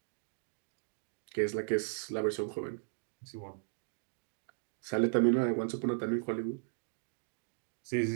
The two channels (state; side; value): silent; left; digital silence